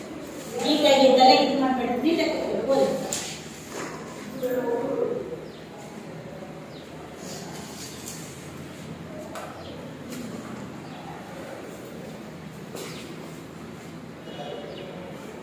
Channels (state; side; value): identical; both; correlation 1.00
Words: ನೀಟಾಗಿ ತಲೆ ಇದು ಮಾಡ್ಬೇಡಿ, ನೀಟಾಗಿ ಓದಿ.